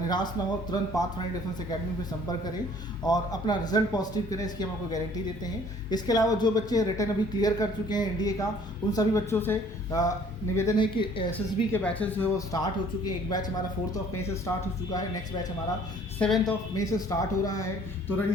ना हो, तुरंत पाथफाइंडर डिफेंस एकेडमी पे संपर्क करें और अपना रिजल्ट पॉजिटिव करें, इसकी हम आपको गारंटी देते हैं। इसके अलावा जो बच्चे रिटर्न अभी क्लियर कर चुके हैं एनडीए का, उन सभी बच्चों से निवेदन है कि एसएसबी के बैचेस जो है वो स्टार्ट हो चुके हैं। एक बैच हमारा 4 मई से स्टार्ट हो चुका है, नेक्स्ट बैच हमारा 7 मई से स्टार्ट हो रहा है। तो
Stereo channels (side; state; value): both; normal; correlation 0.56